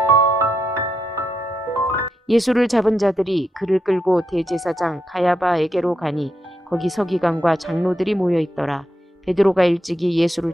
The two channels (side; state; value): both; normal; correlation 0.83